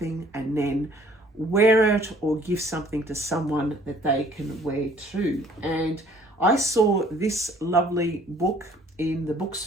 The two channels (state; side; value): normal; both; correlation 0.57